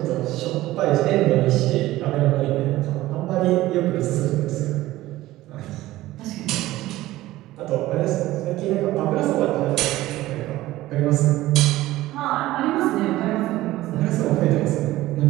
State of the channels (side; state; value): left; quieter; 16.5 dB